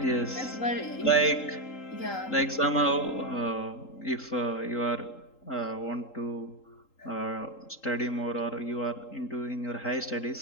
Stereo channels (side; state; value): right; late; 3.8 ms